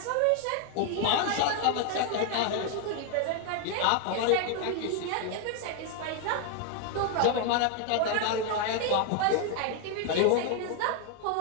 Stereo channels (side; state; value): both; different; correlation 0.00